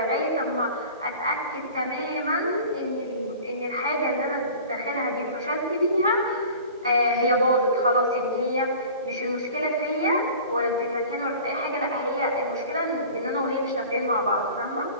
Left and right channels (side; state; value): both; inverted; correlation -0.42